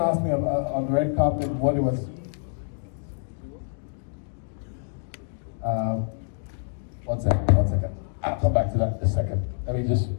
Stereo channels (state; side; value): silent; right; digital silence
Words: asked me on the red carpet what it was. One second. I'll come back to that in a second. Let me just